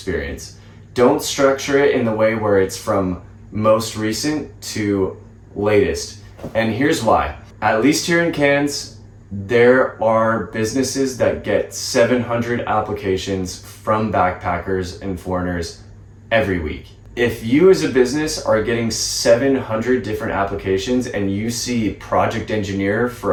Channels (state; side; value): identical; both; correlation 1.00